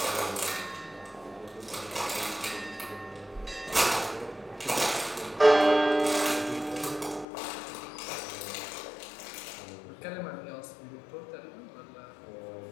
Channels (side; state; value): right; drops out; at 7.2 s